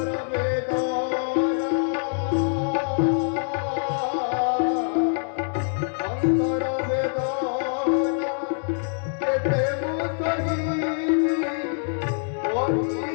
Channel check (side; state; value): right; silent; digital silence